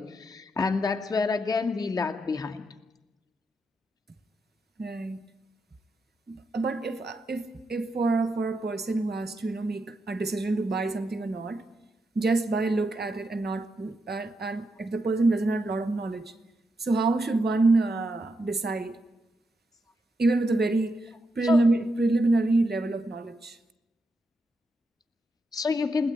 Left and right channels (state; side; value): normal; both; correlation 0.83